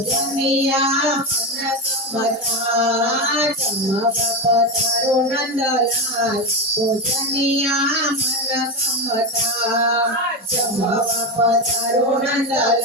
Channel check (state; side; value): normal; both; correlation 0.14